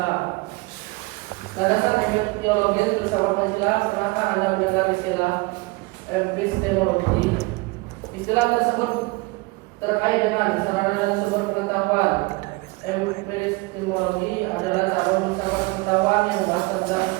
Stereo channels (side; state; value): left; quieter; 24.3 dB